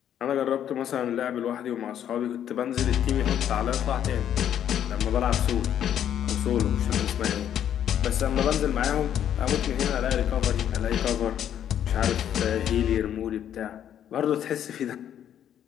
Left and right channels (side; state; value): right; quieter; 10.0 dB